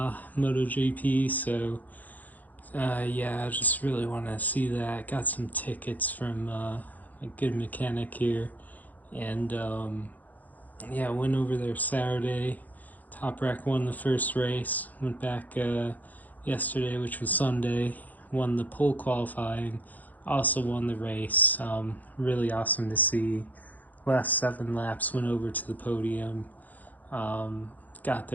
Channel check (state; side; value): late; right; 0.081 ms